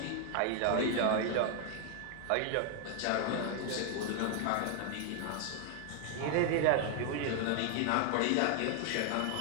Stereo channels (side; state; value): both; different; correlation 0.00